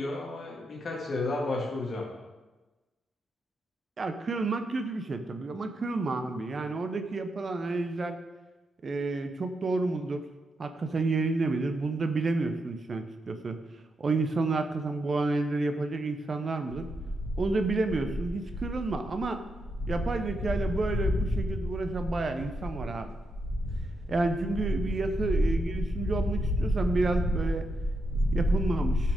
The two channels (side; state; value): both; normal; correlation 0.83